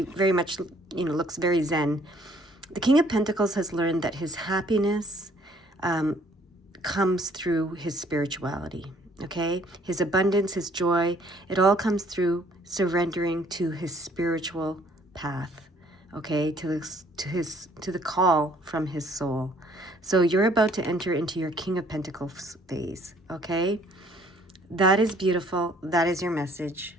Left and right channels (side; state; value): both; normal; correlation 0.61